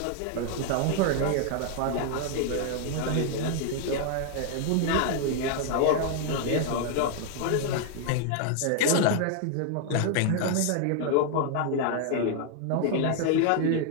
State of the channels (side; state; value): both; different; correlation 0.00